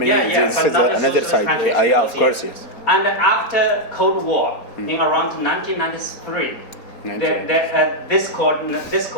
This is another side. Of course, yes. And after Cold War, in around 1993, this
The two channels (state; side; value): late; right; 4.2 ms